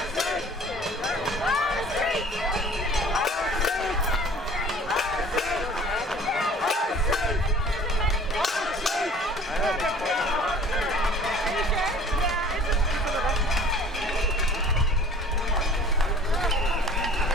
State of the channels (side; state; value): both; normal; correlation 0.48